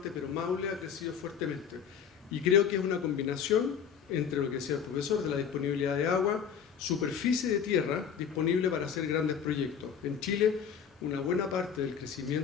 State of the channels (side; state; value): right; quieter; 7.5 dB